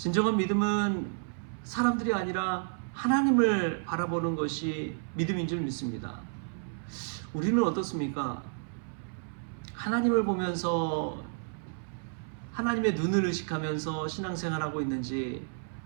믿음은 사람들이 아니라 하나님을 바라보는 것이 믿음인 줄 믿습니다. 우리는 어떻습니까? 하나님을 보면서 하나님의 눈을 의식하면서 신앙생활하고 있는지,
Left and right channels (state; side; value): silent; left; 57 dB below the other